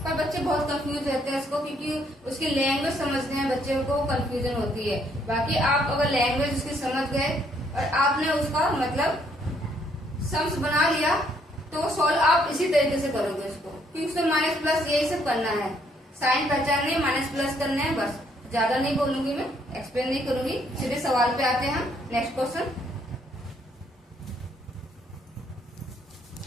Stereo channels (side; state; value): both; normal; correlation 0.69